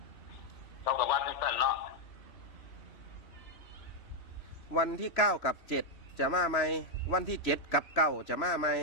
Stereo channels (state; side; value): late; right; 3.1 ms